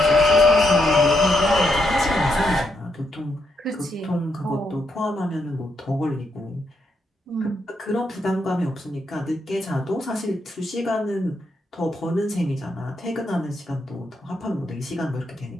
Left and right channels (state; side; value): normal; both; correlation 0.79